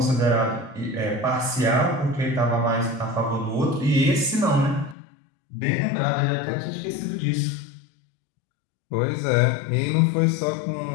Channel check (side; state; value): right; drops out; at 5.0 s